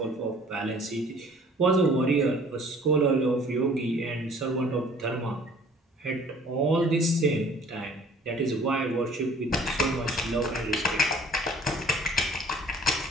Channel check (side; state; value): both; normal; correlation 0.54